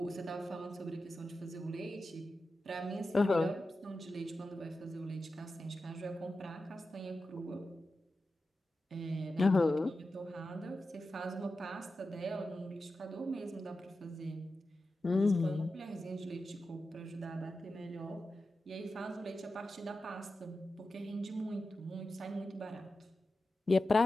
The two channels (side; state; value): both; normal; correlation 0.92